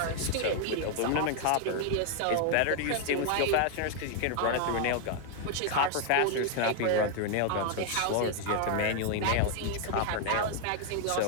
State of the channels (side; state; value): both; different; correlation 0.00